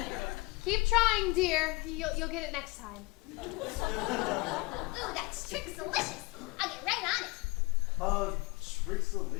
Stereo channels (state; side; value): quieter; right; 24.0 dB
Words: Keep trying, dear. You'll get it next time. Ooh, that trick's delicious. I'll get right on it. Trick's